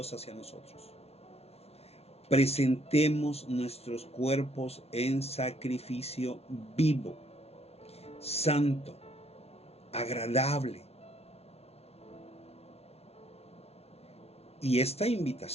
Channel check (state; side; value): late; right; 0.29 ms